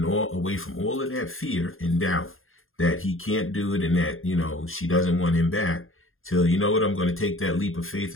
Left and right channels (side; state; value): right; late; 0.60 ms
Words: away from all of that fear and doubt that he can't do it and that, she doesn't want him back till, you know what, I'm going to take that leap of faith